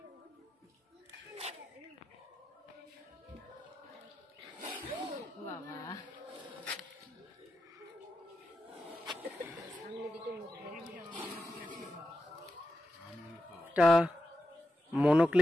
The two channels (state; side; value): normal; both; correlation 0.89